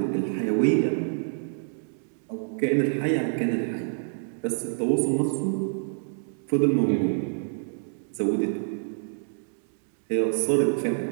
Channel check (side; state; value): left; silent; digital silence